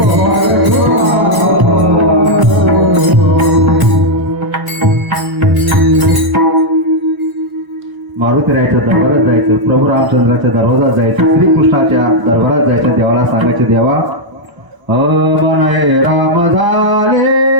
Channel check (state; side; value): late; left; 1.0 ms